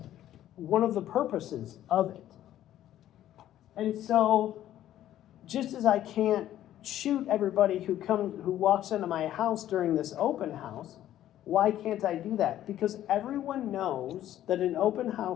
one of the purposes of it. And so, just as I can't shoot everybody who walks into my house during this open house, why can't I do that? Because everyone knows that an open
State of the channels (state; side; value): quieter; right; 12.4 dB